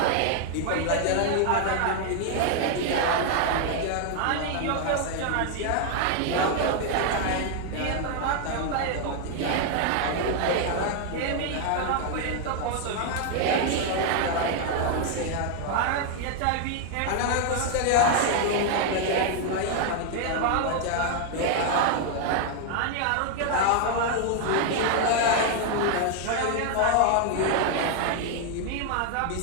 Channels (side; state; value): both; different; correlation 0.00